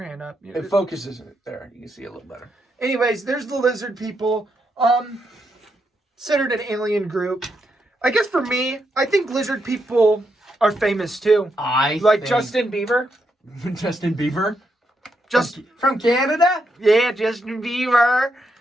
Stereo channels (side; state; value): both; normal; correlation 0.81